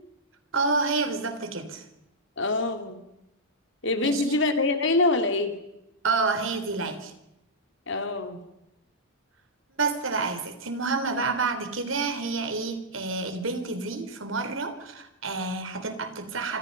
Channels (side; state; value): both; normal; correlation -0.10